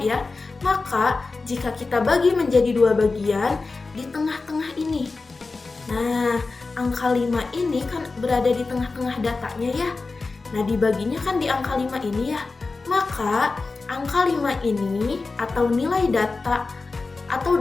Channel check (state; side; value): quieter; right; 3.9 dB